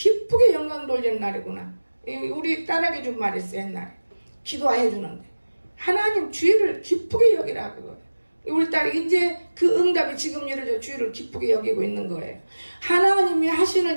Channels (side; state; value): both; inverted; correlation -1.00